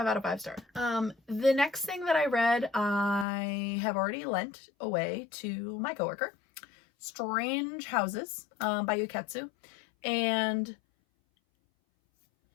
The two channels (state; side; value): drops out; right; at 3.2 s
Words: out of 5 stars. The next thing that I read, I have already lent away to my coworker. Strange Houses by Yuketsu. And